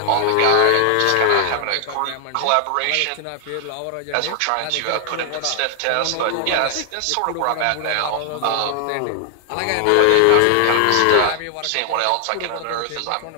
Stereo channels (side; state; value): both; different; correlation 0.00